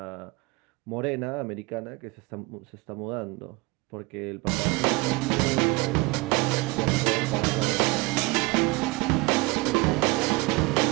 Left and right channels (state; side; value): quieter; left; 24.0 dB